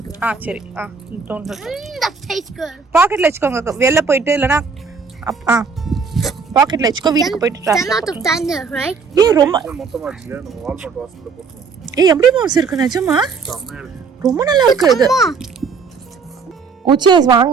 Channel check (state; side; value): quieter; left; 5.3 dB